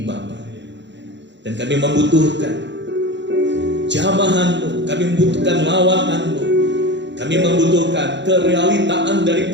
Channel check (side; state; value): left; late; 0.52 ms